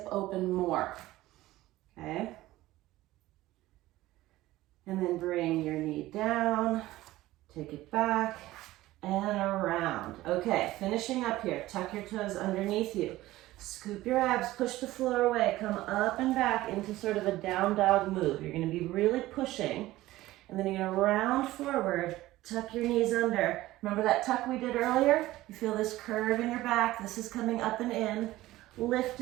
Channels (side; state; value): left; quieter; 16.8 dB